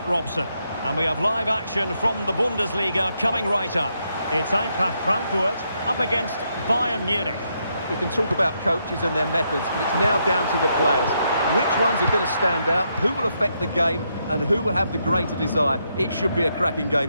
Robson. And we have live action from the Bundesliga coming right up. It's Eintracht Frankfurt up against Bayern Munich. We can talk about coaches and their methods, but it's now down to the players. Which ones are going to stand out, who will affect the game, and who will have the greater desire? It should be a cracking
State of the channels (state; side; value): inverted; both; correlation -0.79